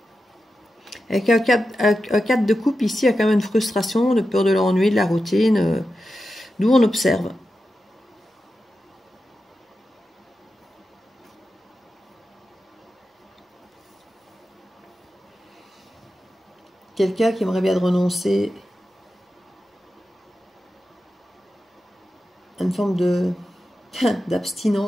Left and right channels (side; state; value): both; normal; correlation 0.91